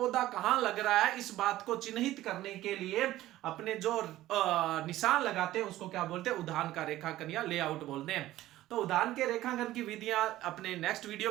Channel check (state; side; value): quieter; left; 15.2 dB